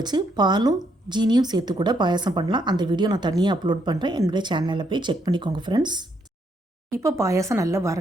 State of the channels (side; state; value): both; normal; correlation 0.74